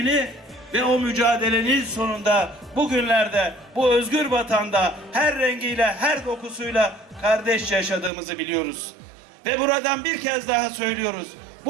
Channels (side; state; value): left; drops out; at 8.1 s